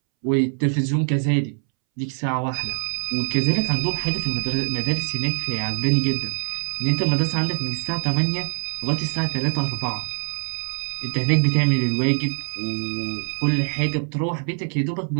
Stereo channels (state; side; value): silent; left; 63 dB below the other